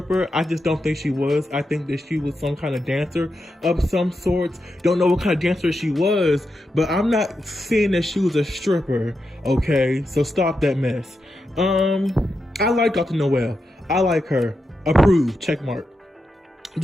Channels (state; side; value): normal; both; correlation 0.87